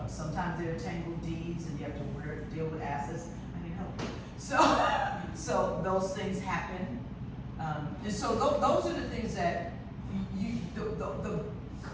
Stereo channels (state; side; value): identical; both; correlation 1.00